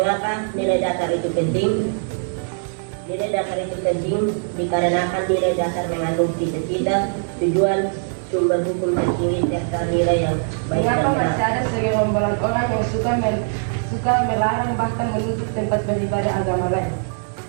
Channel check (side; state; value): left; silent; digital silence